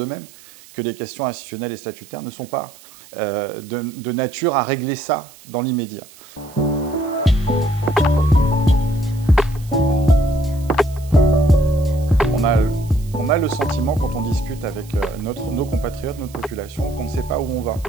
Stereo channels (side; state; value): right; noise; hiss, 22 dB below the sound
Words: que les questions institutionnelles et statutaires ne sont pas de nature à régler ça dans l'immédiat. On a le sentiment, quand on discute avec nos compatriotes, notre population, qu'on ne sait pas où on va,